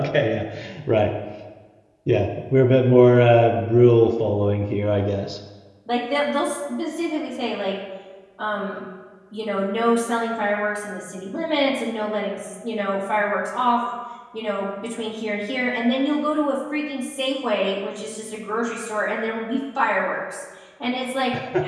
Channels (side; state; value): both; identical; correlation 1.00